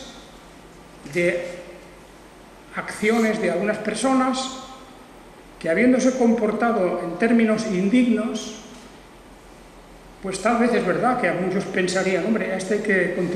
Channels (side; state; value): both; identical; correlation 1.00